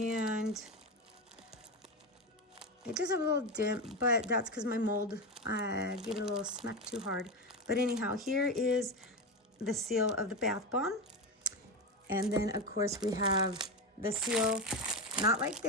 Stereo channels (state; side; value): normal; both; correlation 0.16